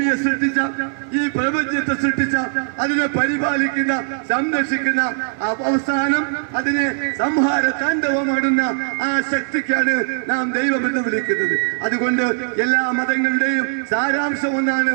സൃഷ്ടിച്ച, ഈ പ്രപഞ്ചത്തെ സൃഷ്ടിച്ച, അതിനെ പരിപാലിക്കുന്ന, സംരക്ഷിക്കുന്ന, അവസാനം അതിനെ സംഹാര താണ്ഡവമാടുന്ന ആ ശക്തിക്കാണ് നാം ദൈവം എന്ന് വിളിക്കുന്നത്. അതുകൊണ്ട് എല്ലാ മതങ്ങളുടെയും സാരാംശം ഒന്നാണ്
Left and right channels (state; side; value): silent; left; digital silence